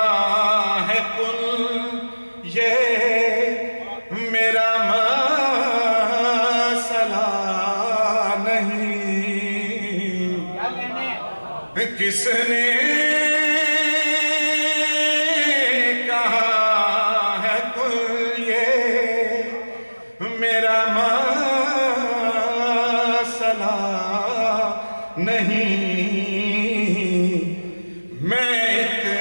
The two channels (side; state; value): both; inverted; correlation -1.00